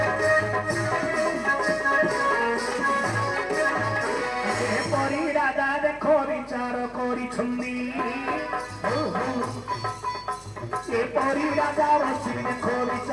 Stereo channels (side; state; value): both; identical; correlation 1.00